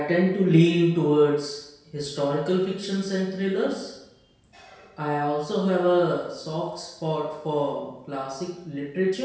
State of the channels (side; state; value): both; identical; correlation 1.00